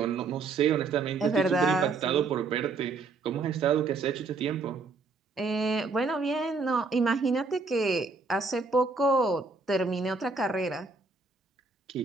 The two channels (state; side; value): quieter; left; 4.1 dB